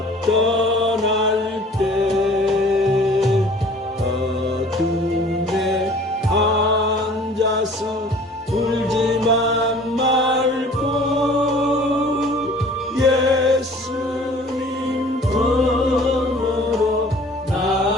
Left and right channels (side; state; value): both; normal; correlation 0.49